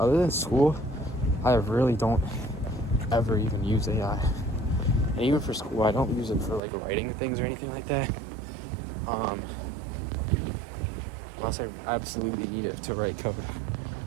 than school, I really don't ever even use AI. And even for school, I don't use it for like writing things or anything like that. Unless I absolutely need it to write code.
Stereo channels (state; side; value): drops out; left; at 6.6 s